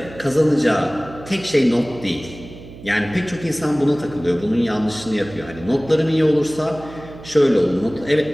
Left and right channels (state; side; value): noise; right; hum, 17 dB below the sound